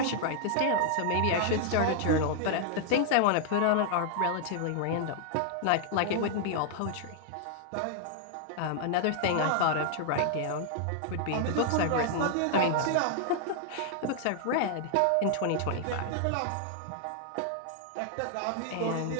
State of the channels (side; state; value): both; different; correlation 0.00